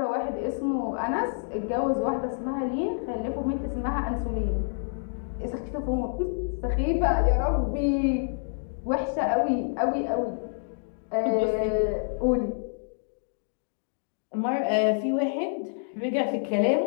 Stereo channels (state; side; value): silent; right; digital silence